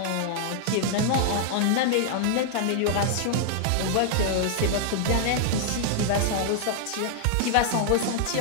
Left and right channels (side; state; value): both; different; correlation -0.01